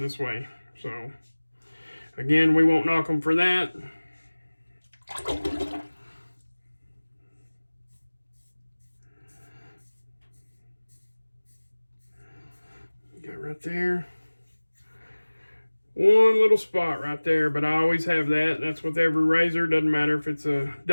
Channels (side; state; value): both; inverted; correlation -1.00